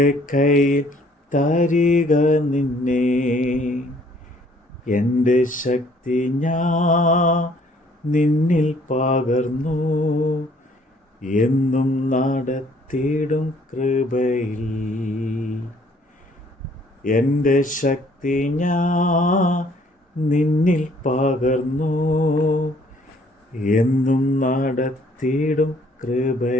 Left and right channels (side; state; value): both; normal; correlation 0.61